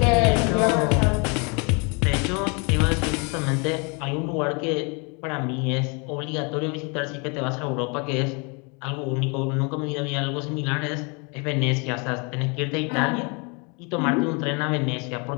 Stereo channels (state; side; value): quieter; right; 32.6 dB